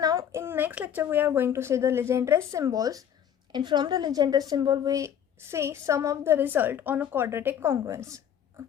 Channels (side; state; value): right; quieter; 9.2 dB